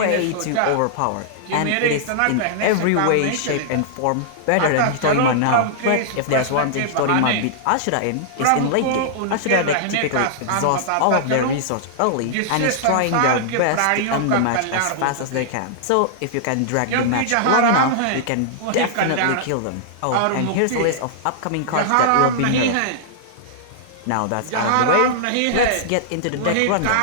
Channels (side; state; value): both; different; correlation -0.01